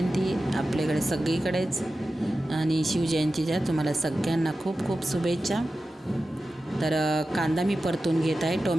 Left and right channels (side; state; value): both; normal; correlation 0.93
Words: आपल्याकडे सगळीकडेच, आणि शिवजयंतीच्या तुम्हाला सगळ्यांना खूप खूप शुभेच्छा। तर कांदा मी परतून घेत आहे।